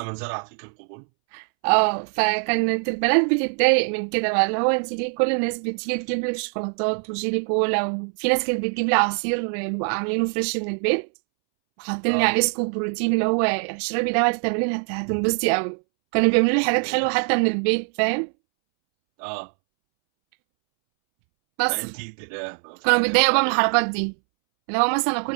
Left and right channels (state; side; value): silent; left; 64 dB below the other